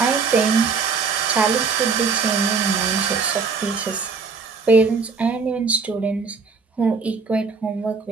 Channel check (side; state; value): left; quieter; 5.1 dB